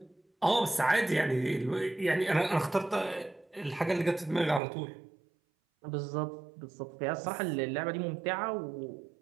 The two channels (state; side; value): drops out; left; at 4.6 s